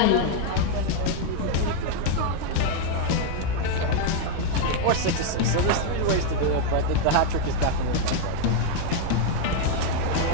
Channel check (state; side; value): different; both; correlation 0.00